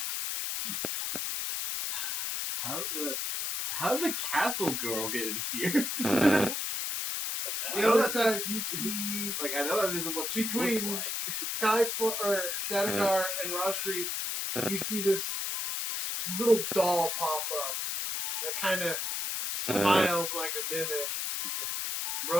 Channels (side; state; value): left; noise; hiss, 1 dB below the sound